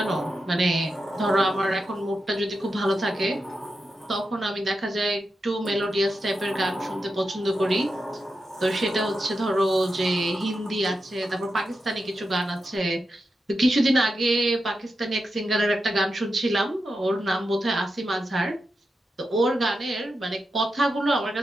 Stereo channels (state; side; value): normal; both; correlation 0.88